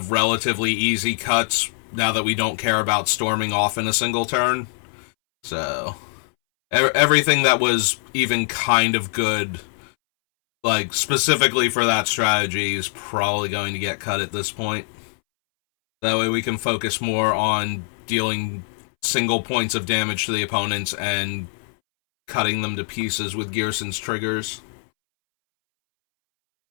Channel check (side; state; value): right; silent; 64 dB below the other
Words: relatively easy cuts now that we don't care about storming off in a single turn. So, everything that was even kind of good, like specifically for that strategy, is probably going to get cut at this point. That way we can focus more on dealing single points of damage to the opponents and cutting them to pieces with Ghyrson's triggers.